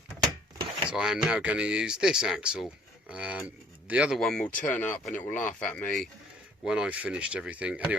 So I am now going to use this axle. The other one will turn up and it will laugh at me, when I've finished everything.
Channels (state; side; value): normal; both; correlation 0.58